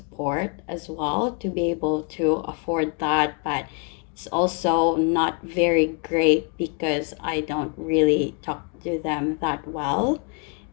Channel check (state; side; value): quieter; right; 36.7 dB